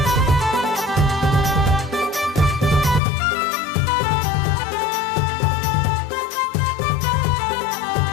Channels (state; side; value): drops out; right; at 3.0 s